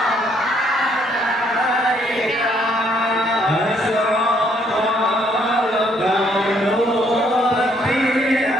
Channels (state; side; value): normal; both; correlation 0.68